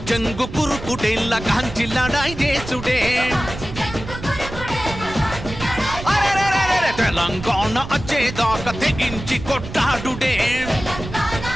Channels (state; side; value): noise; right; rumble, 10 dB below the sound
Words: చెంగు కురుకుడే లగాంచి లడాయి చేసుడే తెలంగాణ వచ్చేదాకా తెగించి కొట్లాడుడే